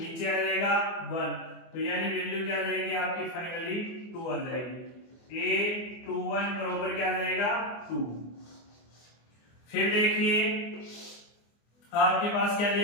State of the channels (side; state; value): right; late; 24 ms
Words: आ जाएगा 1, तो यानी वैल्यू क्या आ जाएगी आपकी फाइनली 2 आ जाएगी। a21 बराबर क्या आ जाएगा 2। फिर देखिए आपके पास क्या